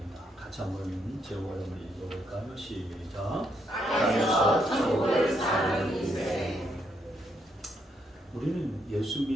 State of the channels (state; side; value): normal; both; correlation 0.76